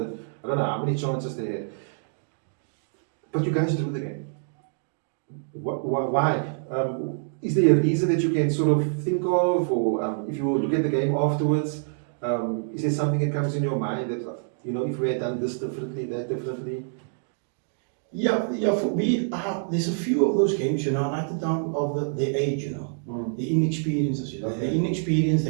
I don't know how many chances they had. But you guys drew the game. Why? Is there a reason that you can sort of think of, or if you look at the game afterwards, is there something that comes in your mind that, if we had done this differently, that differently? Yeah, for me, there's a few of those games, like the down of the age, the inexperiences, the inexperience,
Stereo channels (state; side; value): silent; left; digital silence